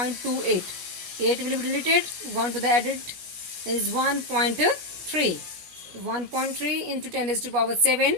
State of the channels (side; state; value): left; late; 17 ms